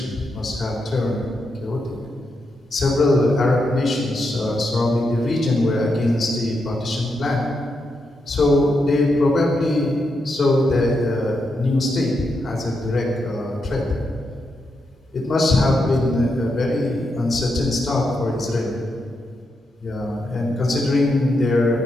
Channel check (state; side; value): normal; both; correlation 0.83